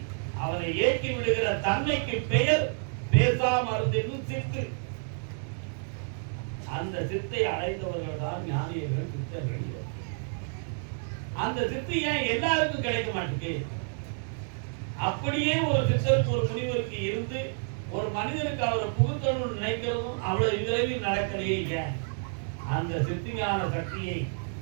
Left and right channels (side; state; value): left; silent; 58 dB below the other